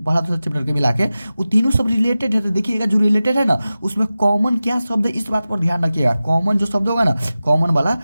के मिला के, वो तीनों सब रिलेटेड है। तो देखिएगा जो रिलेटेड है ना, उसमें कॉमन क्या शब्द है, इस बात पर ध्यान रखिएगा। कॉमन जो शब्द होगा ना, कॉमन वाला,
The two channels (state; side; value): inverted; both; correlation -0.95